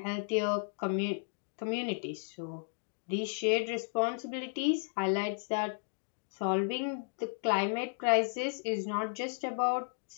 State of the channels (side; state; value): right; silent; digital silence